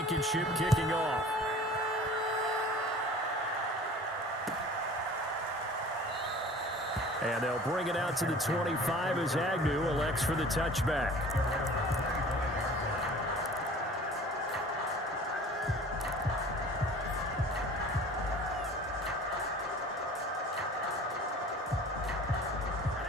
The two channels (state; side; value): normal; both; correlation 0.45